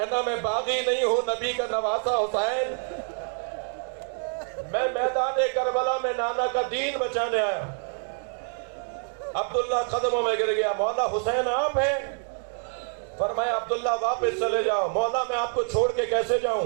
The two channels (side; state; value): left; silent; 56 dB below the other